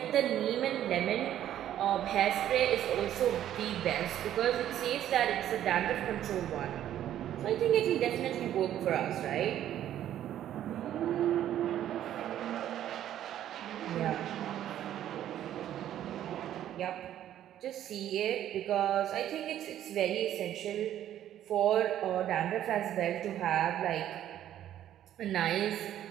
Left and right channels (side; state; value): left; quieter; 11.5 dB